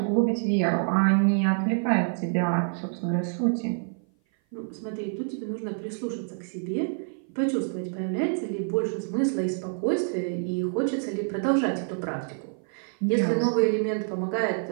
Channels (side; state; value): left; silent; 56 dB below the other